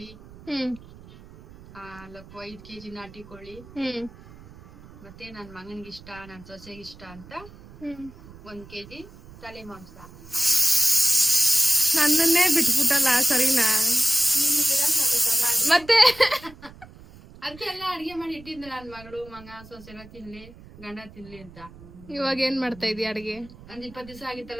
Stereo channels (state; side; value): noise; right; rumble, 20 dB below the sound